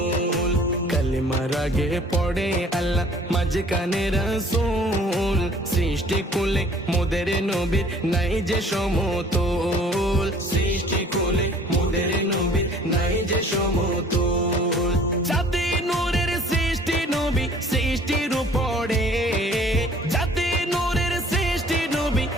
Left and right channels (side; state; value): both; normal; correlation 0.53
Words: কালিমার আগে পড়ে আল্লাহ মাঝখানে রাসূল সৃষ্টি কুলে মোদের নবীর নাই যে সমতুল সৃষ্টি কুলে মোদের নবীর নাই যে সমতুল জাতি নূরের সৃষ্টি নবী সৃষ্টির উপরে জাতি নূরের সৃষ্টি নবী